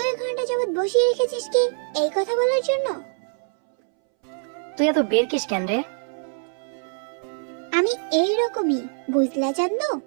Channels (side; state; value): left; silent; 63 dB below the other